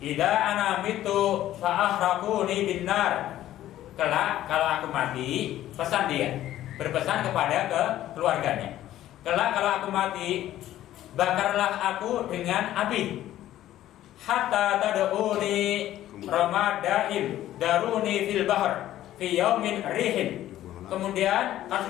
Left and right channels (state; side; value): quieter; right; 13.3 dB